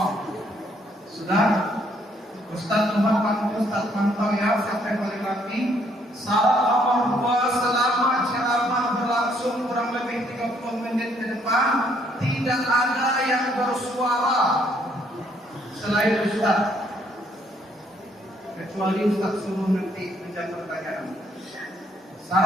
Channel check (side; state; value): both; normal; correlation 0.68